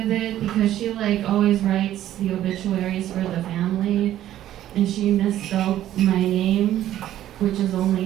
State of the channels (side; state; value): left; quieter; 12.6 dB